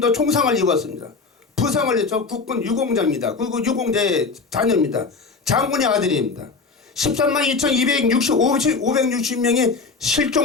총상을 입었습니다. 부상을 했죠. 국군 유공자입니다. 그리고 유공자의 자녀입니다. 장군의 아들입니다. 13만 2,260명이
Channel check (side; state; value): right; quieter; 4.4 dB